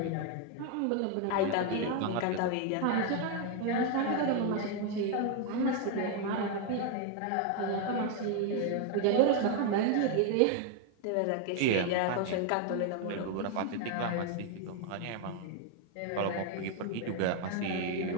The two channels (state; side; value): different; both; correlation 0.01